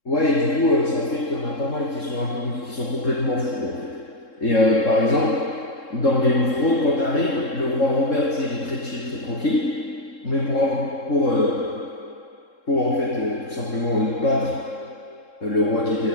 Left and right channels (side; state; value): right; late; 3.7 ms